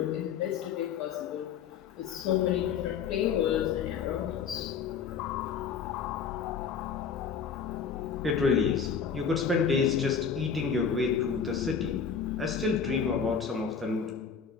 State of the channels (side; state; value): right; quieter; 6.6 dB